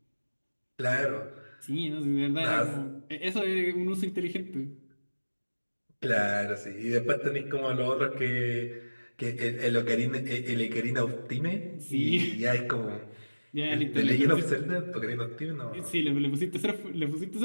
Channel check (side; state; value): both; inverted; correlation -1.00